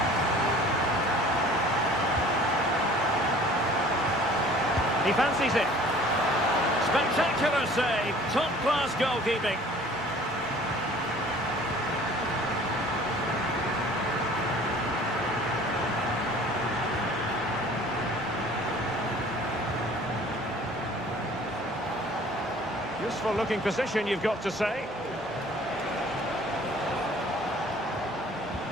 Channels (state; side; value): normal; both; correlation 0.50